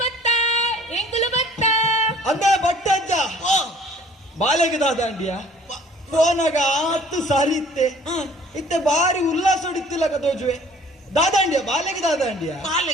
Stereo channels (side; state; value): both; normal; correlation 0.53